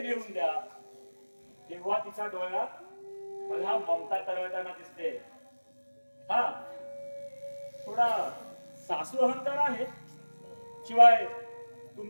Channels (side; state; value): both; inverted; correlation -1.00